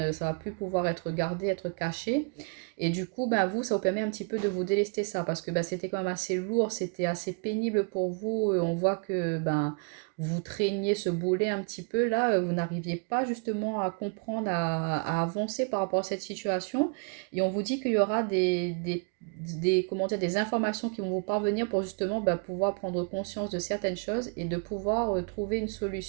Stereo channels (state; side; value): quieter; left; 37.2 dB